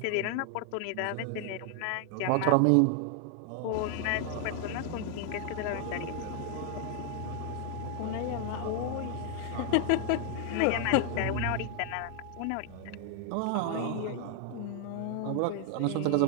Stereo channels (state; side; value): different; both; correlation 0.00